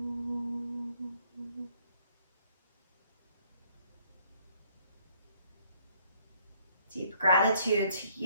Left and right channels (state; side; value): inverted; both; correlation -0.65